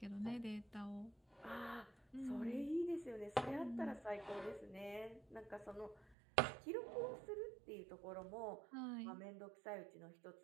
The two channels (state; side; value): drops out; left; at 6.2 s